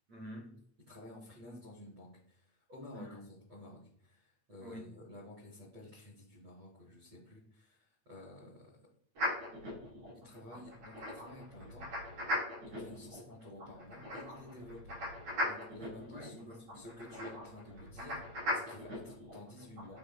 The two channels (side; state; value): left; late; 8.7 ms